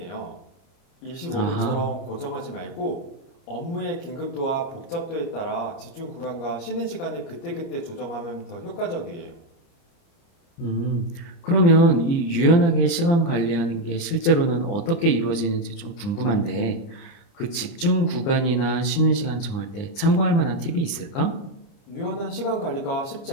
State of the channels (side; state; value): right; late; 29 ms